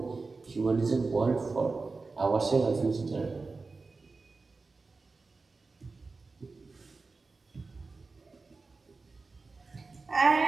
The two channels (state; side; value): quieter; left; 4.0 dB